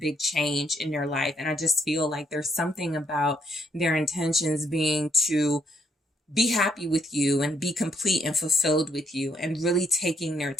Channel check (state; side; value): normal; both; correlation 0.72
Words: change in their life. And I just feel like there's something about their intentions being to be happy with you and be complete and fulfilled with you, and really taking their